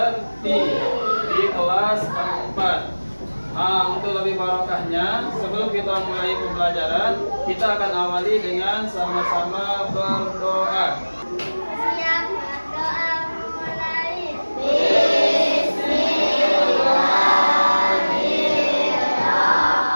di kelas 4. Untuk lebih barokahnya, sebelum kita mulai pembelajaran, kita akan awali dengan sama-sama berdoa. Siap berdoa mulai.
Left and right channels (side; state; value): both; inverted; correlation -1.00